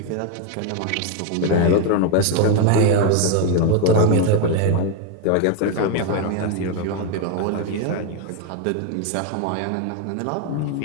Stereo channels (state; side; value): different; both; correlation 0.01